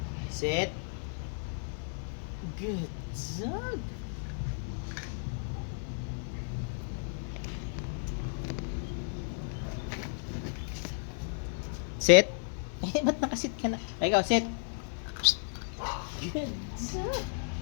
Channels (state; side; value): silent; right; 55 dB below the other